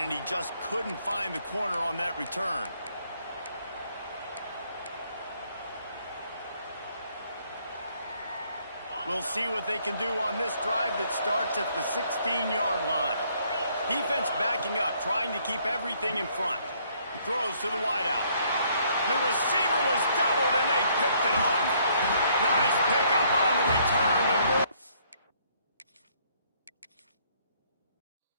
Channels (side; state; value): both; inverted; correlation -0.66